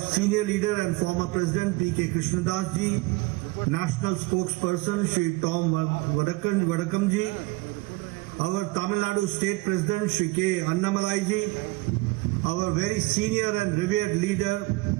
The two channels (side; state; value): left; quieter; 22.4 dB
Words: senior leader and former President, P.K. Krishnadas ji, National Spokesperson, Shri Tom Vadakam ji, our Tamil Nadu State President, Shri K. Annamalai ji, our very senior and revered leader,